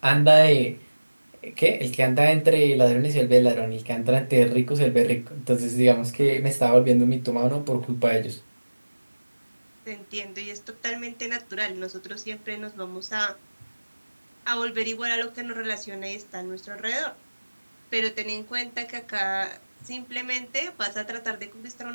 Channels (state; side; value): inverted; both; correlation -1.00